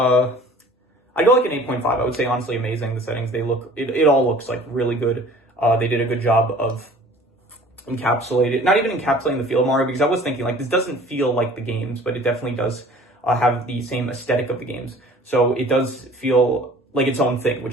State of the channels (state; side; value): normal; both; correlation 0.48